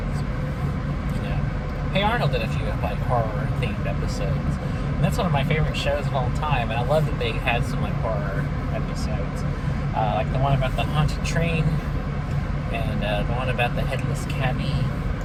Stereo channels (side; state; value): both; identical; correlation 1.00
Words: Hey Arnold did a few like horror themed episodes, and that's one of my favorite shows of all time. And I love that they had some like horror episodes, like the one about the haunted train, and the one about the headless cabbie.